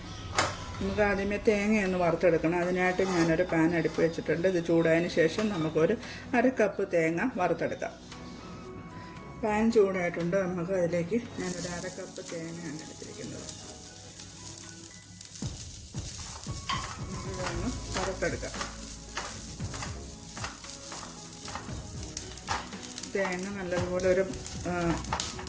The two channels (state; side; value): identical; both; correlation 1.00